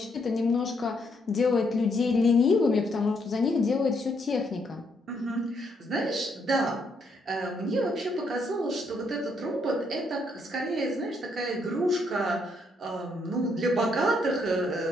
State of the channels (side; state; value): both; normal; correlation 0.74